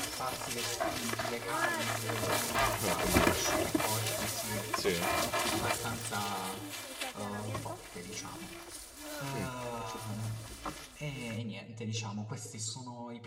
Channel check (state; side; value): identical; both; correlation 1.00